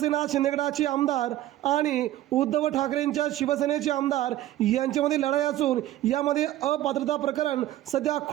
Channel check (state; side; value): quieter; left; 14.2 dB